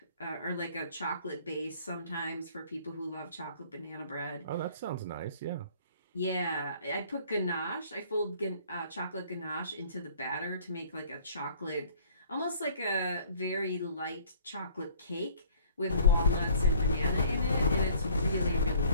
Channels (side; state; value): both; inverted; correlation -0.55